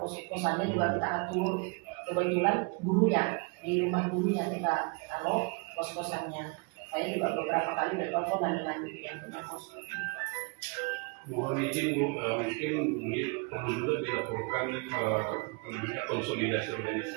juga kita atur. Kebetulan gurunya di rumah gurunya kita taruh kos-kosannya. Saya juga beberapa kali bertelepon dengan yang punya kos. Mohon izin Bu, mungkin perlu juga dilaporkan konsolidasi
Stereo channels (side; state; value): left; quieter; 31.9 dB